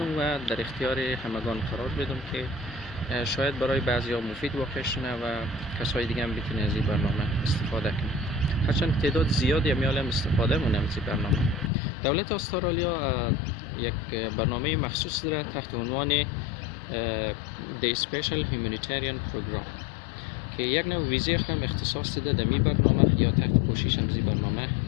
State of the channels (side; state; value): right; drops out; at 11.7 s